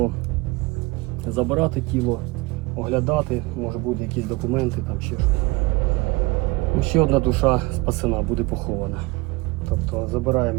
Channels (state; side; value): quieter; left; 23.1 dB